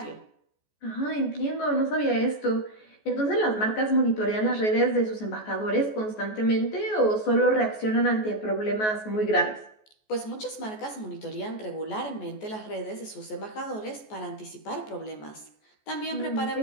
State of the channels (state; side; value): late; right; 14 ms